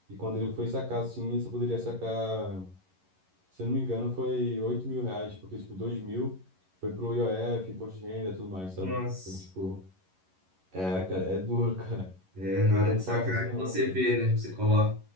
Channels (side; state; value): left; late; 11 ms